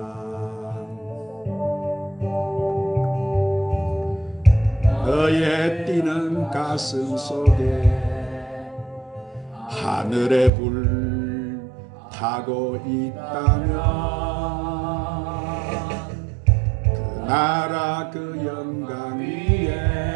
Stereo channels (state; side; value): drops out; left; at 10.5 s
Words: 너의 뛰는 가슴 속에 하늘의 불 타고 있다면 그 나라 그 영광 위에